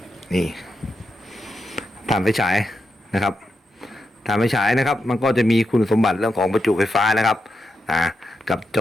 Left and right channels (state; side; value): normal; both; correlation 0.86